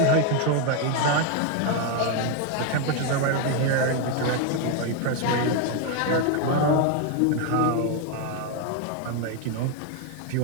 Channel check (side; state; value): both; different; correlation 0.01